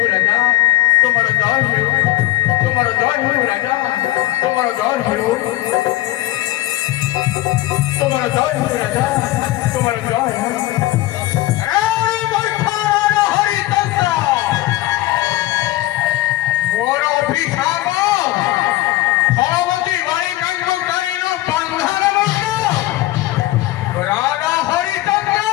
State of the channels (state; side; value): quieter; right; 16.8 dB